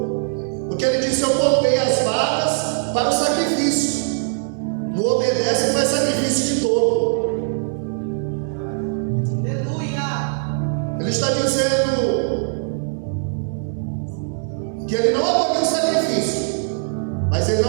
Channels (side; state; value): left; silent; 65 dB below the other